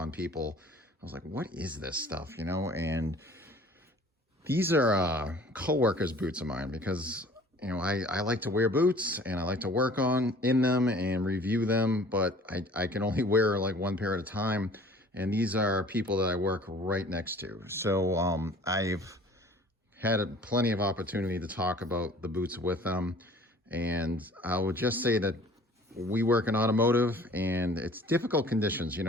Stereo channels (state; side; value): normal; both; correlation 0.50